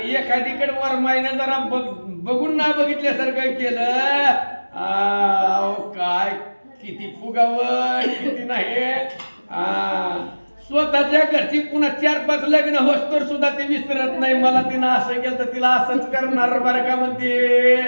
एखादीकडे वरमाईनं जरा बघून ना बघितल्यासारखं केलं, काय किती फुगावं किती नाही. स्वतःच्या घरची पुन्हा 4-5 लग्न होस्तर सुद्धा ती विसरत नाही. मला तिनं असं केलं तर तिला असंच करणार बरं का म्हणते.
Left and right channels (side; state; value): both; inverted; correlation -1.00